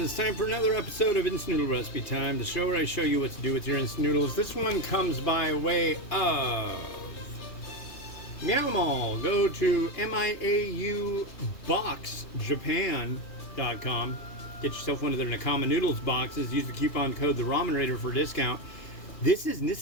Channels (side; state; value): right; late; 2.8 ms